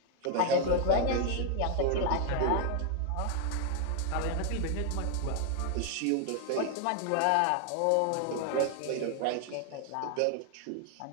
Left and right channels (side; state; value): both; different; correlation 0.00